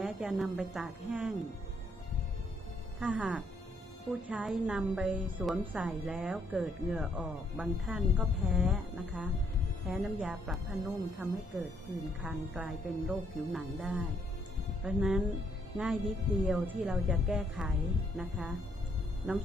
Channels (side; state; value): both; normal; correlation 0.71